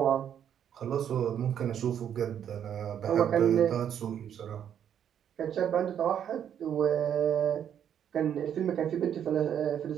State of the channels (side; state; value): left; quieter; 9.2 dB